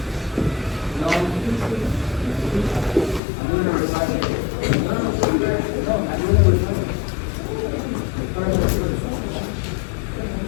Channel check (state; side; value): drops out; right; at 3.2 s